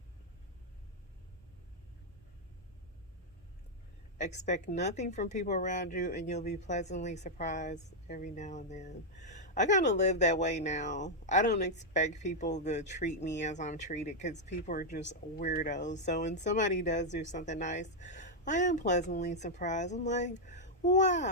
Expect nothing from people around you, and you'll be pleasantly surprised every now and then. I kind of live that way now. I don't expect people to treat me as I'm treated, because people are just weirdos. So when somebody does do something nice, I am pleasantly surprised. I'm like,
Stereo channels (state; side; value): normal; both; correlation -0.02